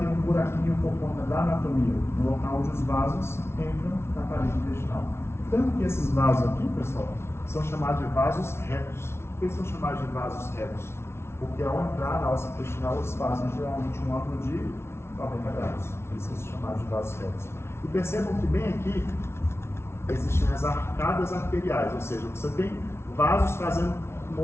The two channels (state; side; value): late; right; 0.12 ms